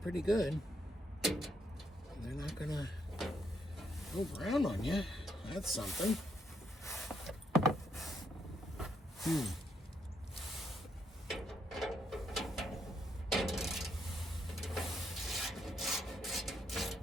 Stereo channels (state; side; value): normal; both; correlation 0.76